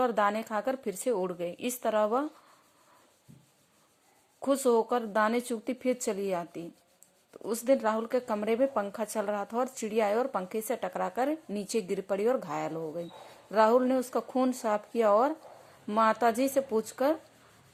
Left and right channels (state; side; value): identical; both; correlation 1.00